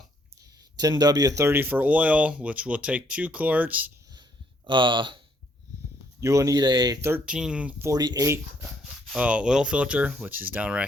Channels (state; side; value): normal; both; correlation 0.68